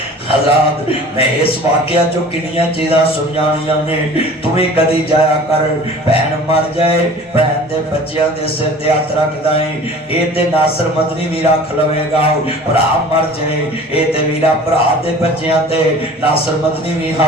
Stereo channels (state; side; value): normal; both; correlation 0.44